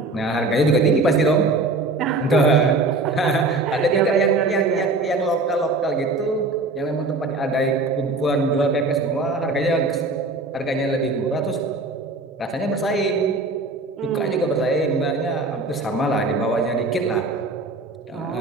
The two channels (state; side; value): quieter; left; 3.2 dB